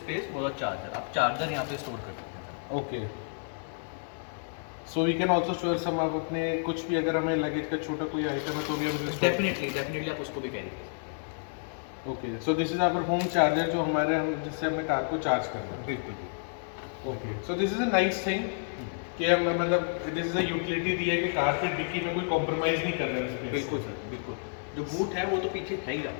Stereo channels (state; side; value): silent; right; 58 dB below the other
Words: for the charger. आप चार्जर यहाँ पे स्टोर कर सकते हैं। Okay, so we can also store some, आप अपने कुछ भी अगर हमें लगेज का छोटा कोई आइटम है तो भी हम डेफिनेटली आप उसको भी कैरी कर सकते okay, so this is our home charger जो हमारे हम जिससे हमने कार को चार्ज करना हैं। है। बिल्कुल। Okay, so this is a nice thing कि हम मतलब दिस इज अ यूटिलिटी दी है कि कार की डिक्की में कोई कॉम्प्रोमाइज नहीं कर रहे हैं। बिल्कुल सर, बिल्कुल। जो बूट है वो तो पीछे है ही